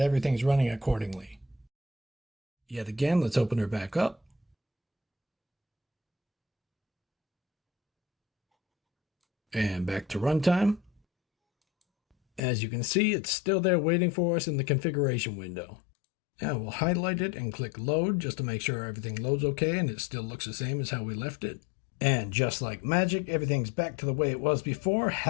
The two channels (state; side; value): drops out; right; at 12.4 s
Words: everything's running accordingly. Yet again, let's open her back up. And back to runtime. As you can see, it's still there waiting for us in the configuration window. Now we'll highlight it and click load just to make sure everything loads okay and it still looks the same as how we left it. And just like magic, everything's back to the way it was before.